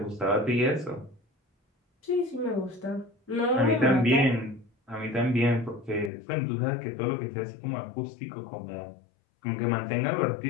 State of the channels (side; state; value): right; drops out; at 6.1 s